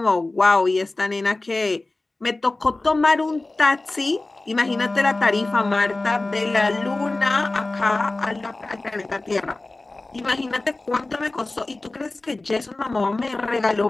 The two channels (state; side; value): quieter; right; 3.0 dB